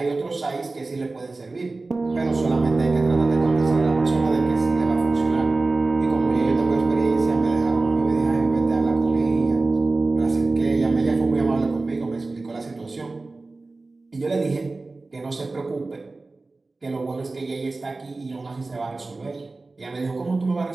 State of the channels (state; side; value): quieter; left; 3.5 dB